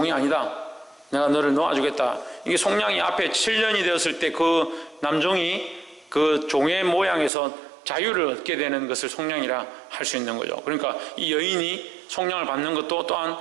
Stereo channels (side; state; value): left; drops out; at 7.3 s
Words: 아니다, 내가 너를 놓아주겠다. 이게 속량이 앞에 7년이 되었을 때 그 남종이 그 종의 모양에서 자유를 얻게 되는 것을 속량이라 할 수 있는 거죠. 그러니까 이 여인이 속량을 받는 것도 또한